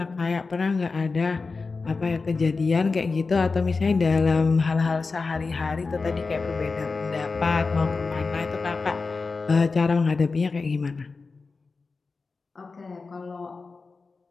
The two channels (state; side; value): quieter; right; 4.2 dB